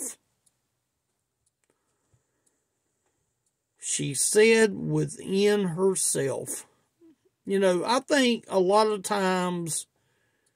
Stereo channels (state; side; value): identical; both; correlation 1.00